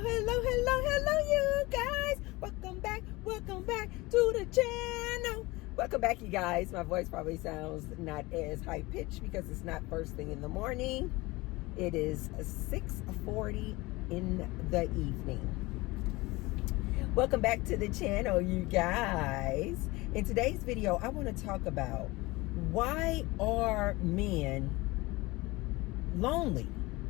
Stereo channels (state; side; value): quieter; right; 22.0 dB